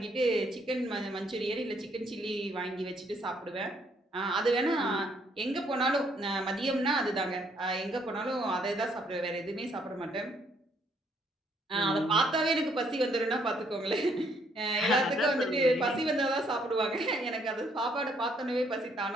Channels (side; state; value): both; normal; correlation 0.68